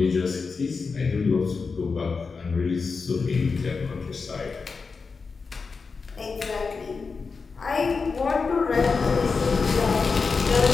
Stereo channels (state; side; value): quieter; right; 4.8 dB